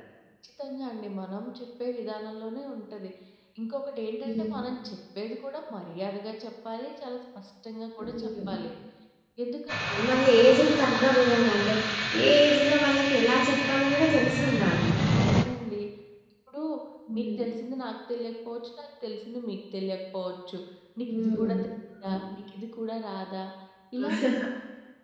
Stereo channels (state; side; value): identical; both; correlation 1.00